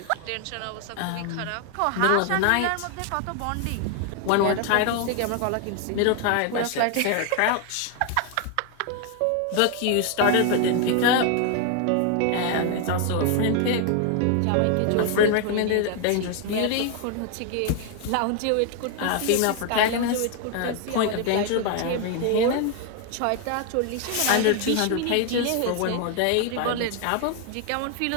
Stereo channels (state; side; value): different; both; correlation 0.00